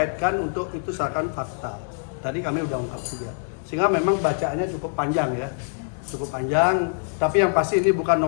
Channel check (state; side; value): silent; right; digital silence